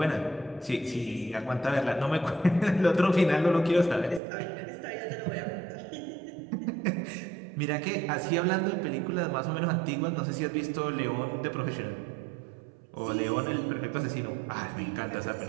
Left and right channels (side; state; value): left; drops out; at 4.2 s